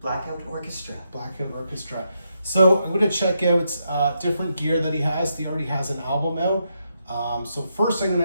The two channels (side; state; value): both; inverted; correlation -0.82